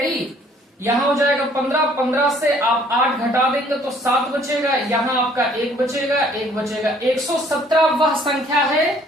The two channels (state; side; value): normal; both; correlation 0.59